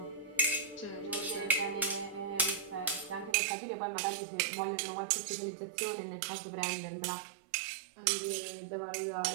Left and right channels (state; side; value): drops out; left; at 3.4 s